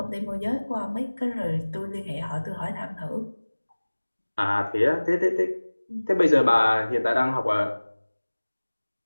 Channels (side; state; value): both; inverted; correlation -1.00